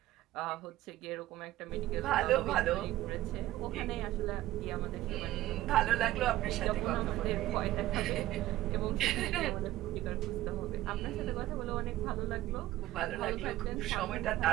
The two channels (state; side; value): quieter; left; 15.4 dB